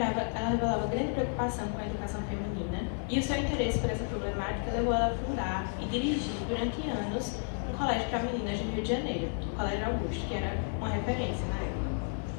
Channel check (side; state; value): right; silent; 56 dB below the other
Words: grande preocupação com a educação feminina e o seu interesse por essa problemática levou ela a fundar e dirigir durante anos um colégio para meninas no Rio de Janeiro, o Colégio Augusto, que era uma referência na época.